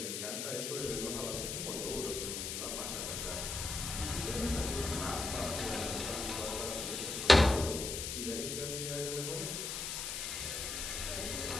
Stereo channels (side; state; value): left; noise; hiss, 3 dB below the sound